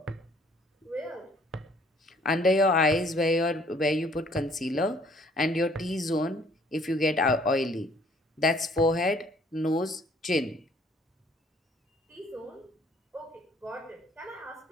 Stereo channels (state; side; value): normal; both; correlation 0.60